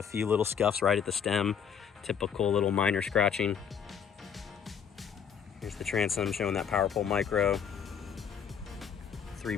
few little scuffs right at the stem. Typical little minor scratching. Here's the transom showing that Power Pull Micro.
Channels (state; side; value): quieter; right; 7.5 dB